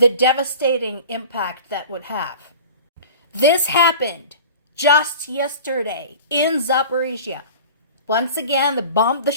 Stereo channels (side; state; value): both; inverted; correlation -0.39